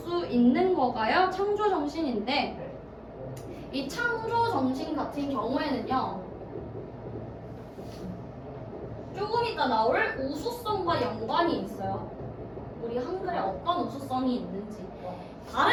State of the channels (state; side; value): identical; both; correlation 1.00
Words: 있는 거가요. 창조정신인데 이 창조정신 같은 경우에는요 조금 이따 나올 우수성과 연관이 있어요. 우리 한글에 어떤 우수성이 있는지.